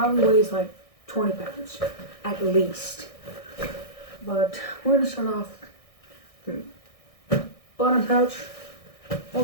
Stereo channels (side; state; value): right; late; 1.6 ms